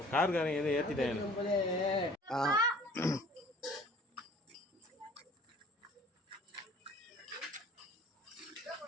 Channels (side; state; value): both; normal; correlation 0.50